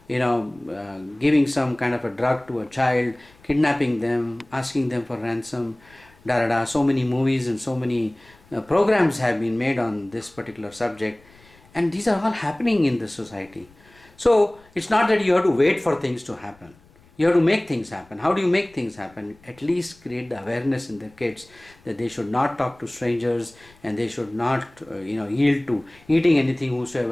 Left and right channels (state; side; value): noise; left; rumble, 28 dB below the sound